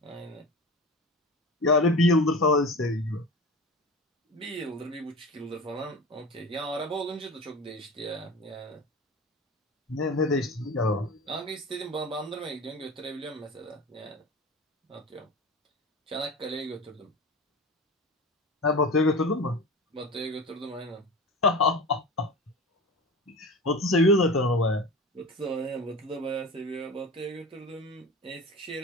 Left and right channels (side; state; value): both; normal; correlation 0.32